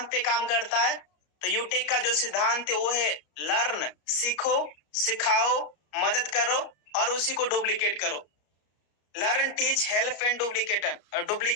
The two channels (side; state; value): right; late; 33 ms